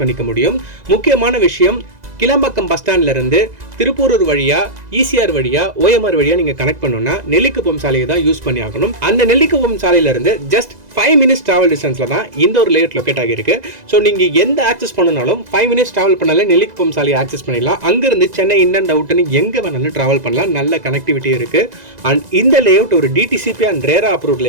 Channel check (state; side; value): late; left; 2.0 ms